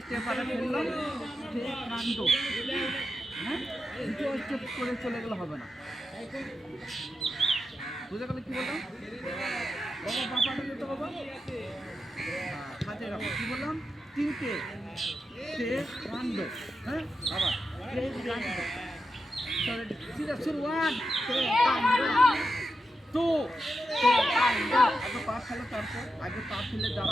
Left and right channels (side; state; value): both; normal; correlation 0.88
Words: পাটা ফেললাম সে কাণ্ড। হ্যাঁ, দ্বিতীয় স্টেপ করে চলে গেলে হবে না। বুঝে গেলে কি বললাম? বাবা বাবাটা যেতে বাবা, হাতে রাখো। কি বললাম? তিনটে সে কাণ্ড। হ্যাঁ, আবার সে কাণ্ড। সিধা শুরু, ওয়ান সে কাণ্ড, টু সে কাণ্ড। আগে পা ফেলো, তারপর আগে পা ফেলে